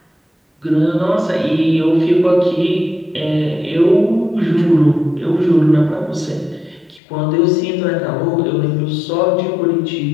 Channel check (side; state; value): right; drops out; at 7.0 s